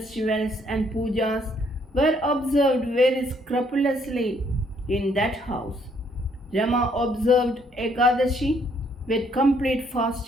and pujas were observed very scrupulously in that house. Rama observed Ekadashi with complete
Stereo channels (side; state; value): both; normal; correlation 0.67